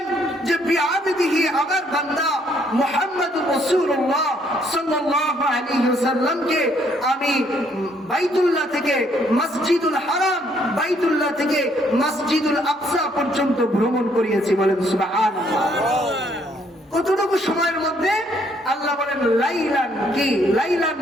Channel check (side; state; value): both; normal; correlation 0.68